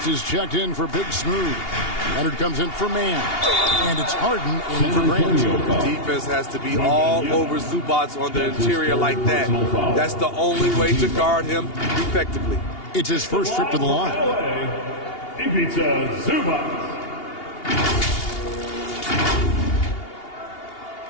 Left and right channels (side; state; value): right; late; 2.8 ms